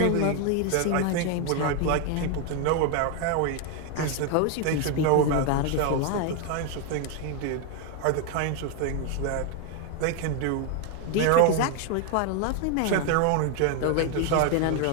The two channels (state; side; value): different; both; correlation 0.01